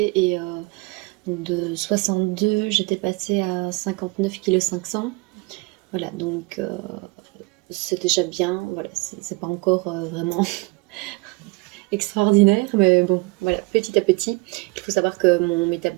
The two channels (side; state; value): left; quieter; 25.9 dB